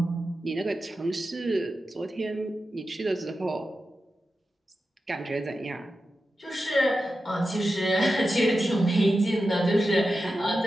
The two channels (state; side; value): normal; both; correlation 0.91